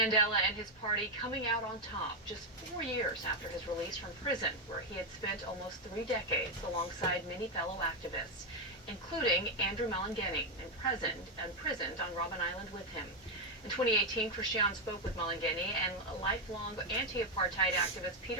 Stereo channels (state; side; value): normal; both; correlation 0.04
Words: and his party coming out on top just 4 years after his release from prison, where he had spent almost 3 decades alongside many fellow activists, including Andrew Malengeni, imprisoned on Robben Island with him. In 2018, Christian spoke with Malengeni and lifelong anti-apartheid activist